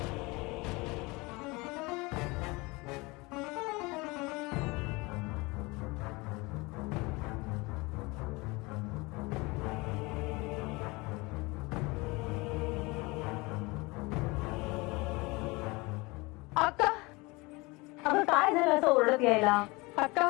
अक्का, अगं काय झालं असं ओरडत यायला? अक्का,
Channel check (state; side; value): quieter; right; 24.6 dB